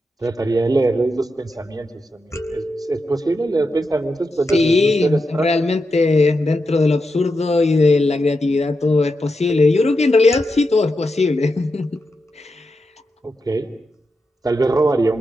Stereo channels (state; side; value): normal; both; correlation 0.87